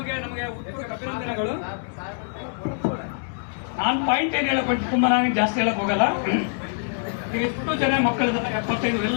ನಮಗೆ ಅಭಿನಂದನೆಗಳು. ನಾನು ಪಾಯಿಂಟ್ ಏನು ಹೇಳಕ್ ತುಂಬಾ ನಾನು ಜಾಸ್ತಿ ಹೇಳಕ್ ಹೋಗಲ್ಲ. ಎಷ್ಟು ಜನ ಮಕ್ಕಳಿದ್ದಾರೆ 75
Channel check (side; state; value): right; silent; digital silence